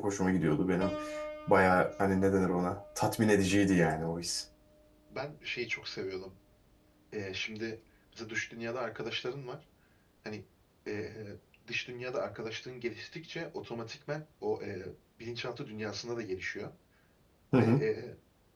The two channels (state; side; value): identical; both; correlation 1.00